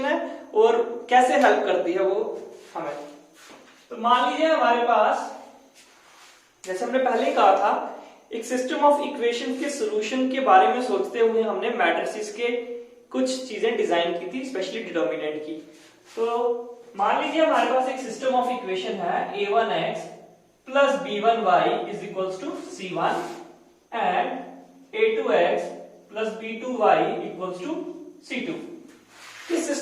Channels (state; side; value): identical; both; correlation 1.00